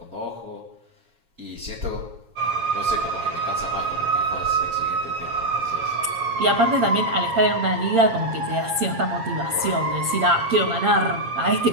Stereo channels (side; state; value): left; late; 7.3 ms